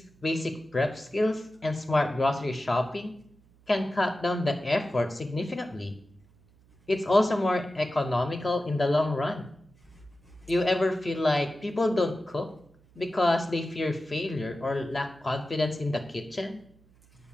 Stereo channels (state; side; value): noise; right; hum, 29 dB below the sound